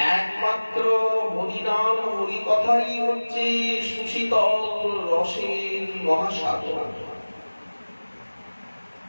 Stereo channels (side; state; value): both; inverted; correlation -1.00